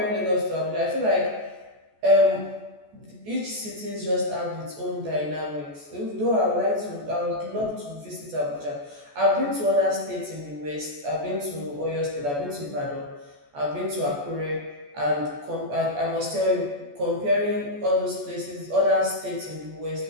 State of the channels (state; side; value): late; left; 14 ms